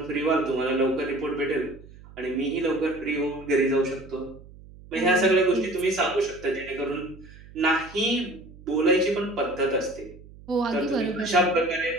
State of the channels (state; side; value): noise; right; hum, 20 dB below the sound